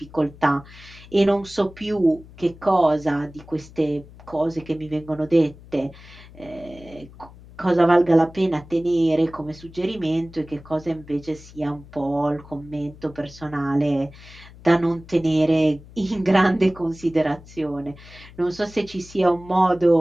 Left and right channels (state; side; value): noise; left; hum, 20 dB below the sound